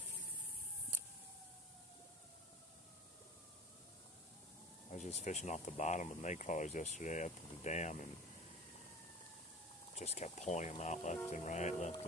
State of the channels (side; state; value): both; normal; correlation 0.39